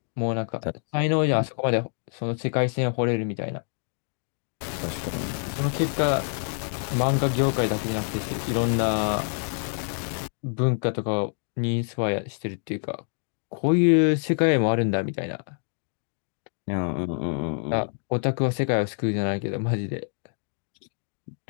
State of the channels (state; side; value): silent; right; digital silence